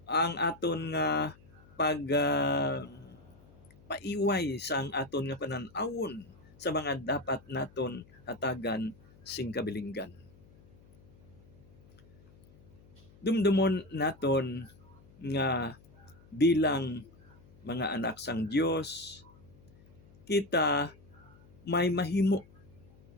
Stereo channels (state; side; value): noise; left; hum, 25 dB below the sound